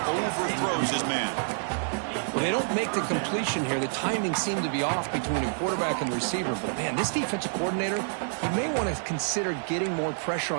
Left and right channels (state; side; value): silent; left; digital silence